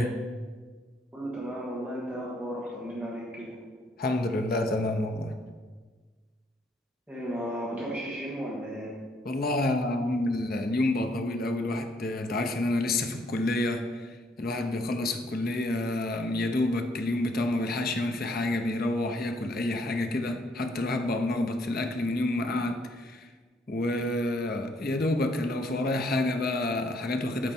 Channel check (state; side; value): normal; both; correlation 0.68